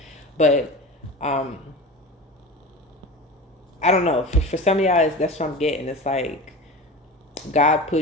But I don't know. For some of y'all, that's what I'm getting. It's like God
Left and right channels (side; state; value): both; normal; correlation 0.31